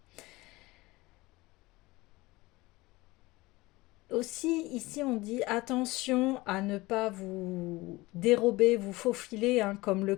Aussi, ici, on dit attention à ne pas vous dérober, vous faufiler, comme le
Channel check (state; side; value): quieter; right; 20.8 dB